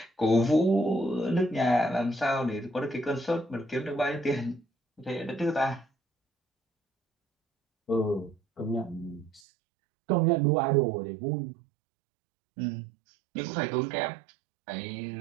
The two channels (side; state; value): left; drops out; at 9.4 s